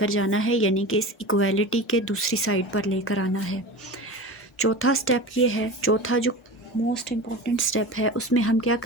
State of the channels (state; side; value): normal; both; correlation 0.31